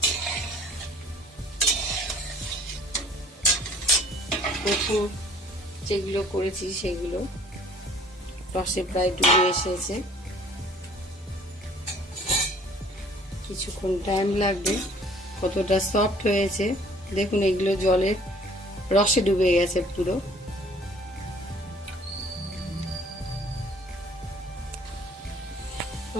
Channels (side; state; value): both; normal; correlation 0.54